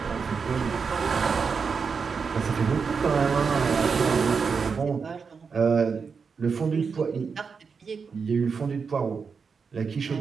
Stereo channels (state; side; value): quieter; left; 5.5 dB